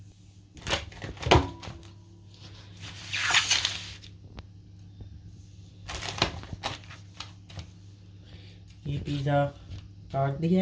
ये पिज़्ज़ा काट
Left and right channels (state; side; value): identical; both; correlation 1.00